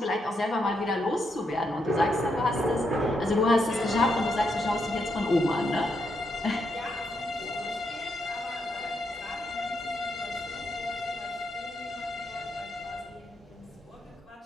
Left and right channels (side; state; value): both; normal; correlation 0.80